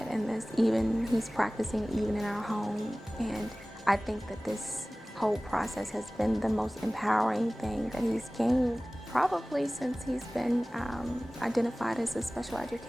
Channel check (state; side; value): normal; both; correlation 0.98